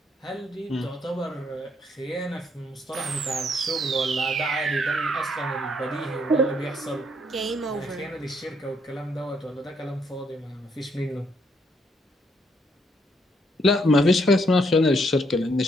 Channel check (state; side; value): normal; both; correlation 0.72